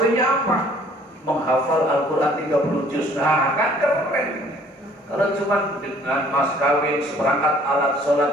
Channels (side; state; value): both; normal; correlation 0.57